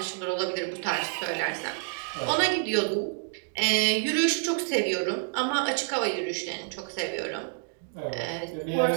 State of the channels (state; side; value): silent; left; 59 dB below the other